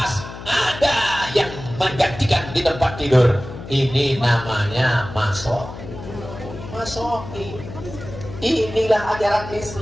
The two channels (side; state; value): left; noise; hum, 12 dB below the sound